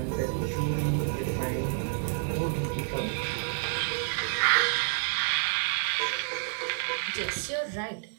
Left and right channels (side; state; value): left; silent; digital silence